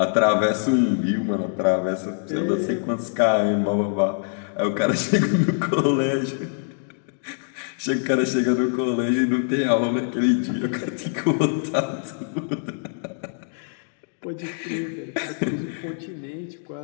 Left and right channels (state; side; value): silent; right; digital silence